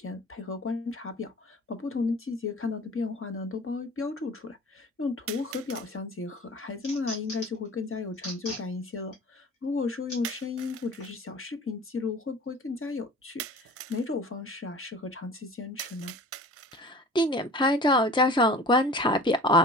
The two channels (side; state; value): both; normal; correlation 0.42